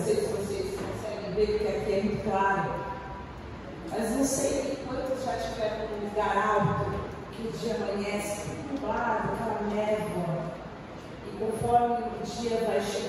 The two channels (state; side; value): identical; both; correlation 1.00